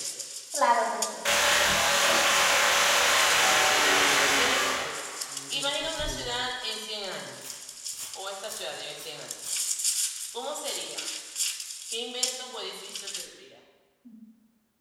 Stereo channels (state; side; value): identical; both; correlation 1.00